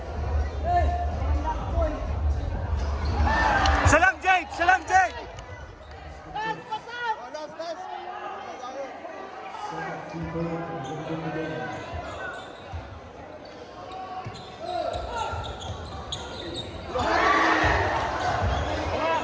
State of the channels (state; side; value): identical; both; correlation 1.00